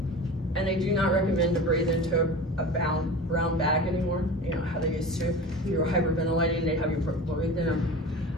and they do not recommend to breathe into a brown bag anymore, you know, how they used to. If you were hyperventilating, they have you breathe in them.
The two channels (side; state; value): both; normal; correlation 0.34